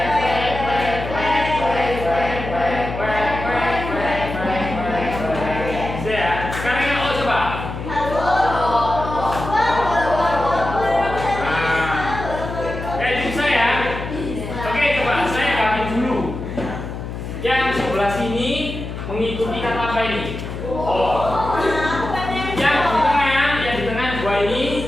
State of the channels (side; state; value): left; noise; hum, 7 dB below the sound